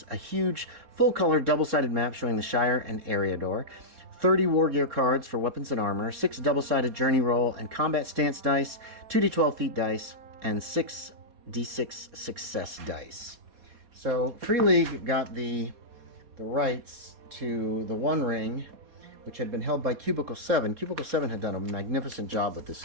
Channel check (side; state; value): left; late; 4.2 ms